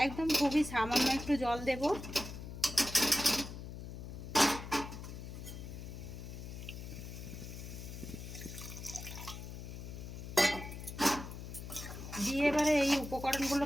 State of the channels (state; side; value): noise; left; hum, 9 dB below the sound